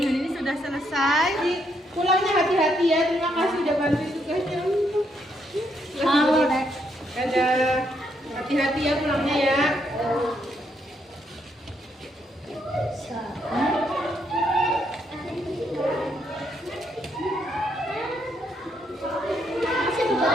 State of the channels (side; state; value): both; normal; correlation 0.75